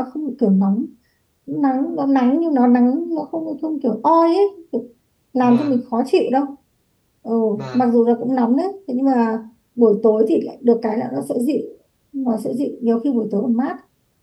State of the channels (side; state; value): both; identical; correlation 1.00